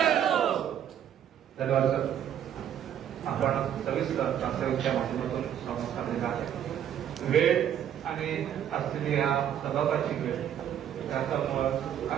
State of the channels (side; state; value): left; quieter; 9.9 dB